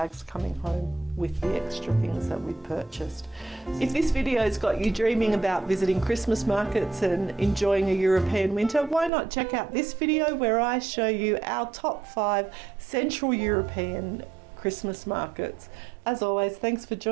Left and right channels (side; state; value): left; drops out; at 9.1 s